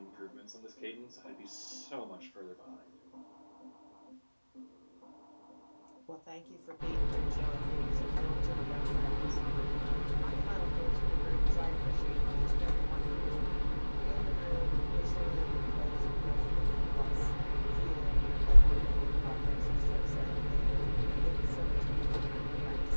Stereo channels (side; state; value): both; inverted; correlation -1.00